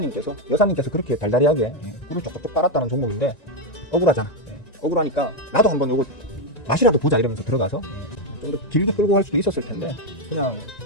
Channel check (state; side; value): late; right; 1.9 ms